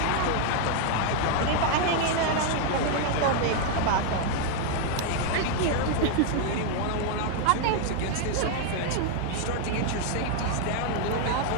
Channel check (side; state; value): both; different; correlation 0.00